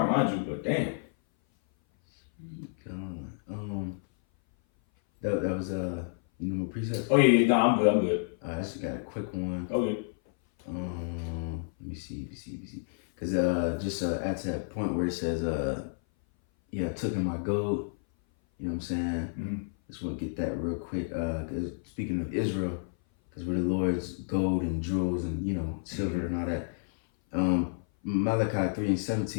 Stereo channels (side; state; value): right; silent; 56 dB below the other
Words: mind you, but damn. That was you know, precepts. Oh yeah, no, I'm good. I actually got a quick one. Okay. Let me see. Cause just at that point where it says took in my gold. You know what I'm saying? Mm-hmm. Just want to get that real quick. Cause speaking of Israel, cause we're the Lord's gold and jewels and silver and all that. Malachi